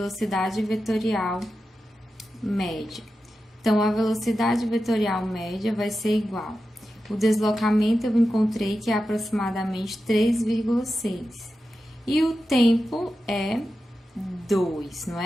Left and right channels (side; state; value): both; normal; correlation 0.91